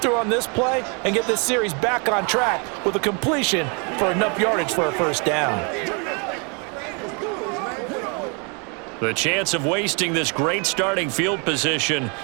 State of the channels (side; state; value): left; quieter; 34.4 dB